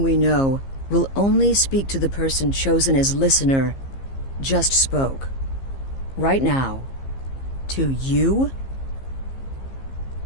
we know, will only speak to the person chosen as listener, just spoke. Right now. To you?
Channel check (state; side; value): late; right; 15 ms